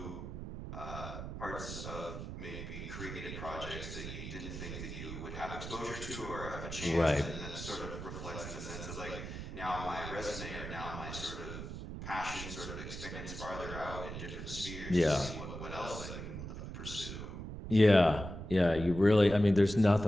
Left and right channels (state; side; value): noise; right; rumble, 8 dB below the sound